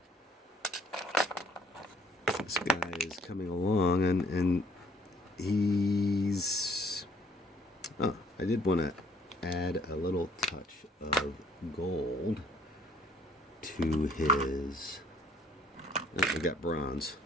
This guy is coming along, and he's... Oh, I did want to add a little touch of gold to his... Oh, we got bronze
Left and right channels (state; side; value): normal; both; correlation 0.60